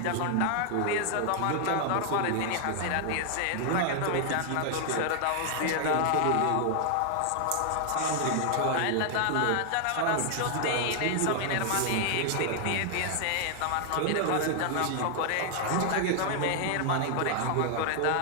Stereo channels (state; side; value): different; both; correlation 0.00